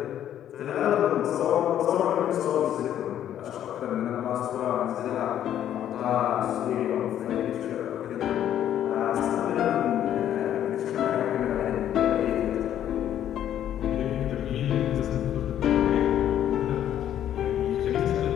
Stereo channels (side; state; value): right; quieter; 10.8 dB